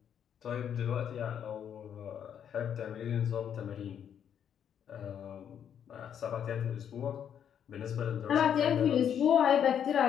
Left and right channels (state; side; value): quieter; right; 8.8 dB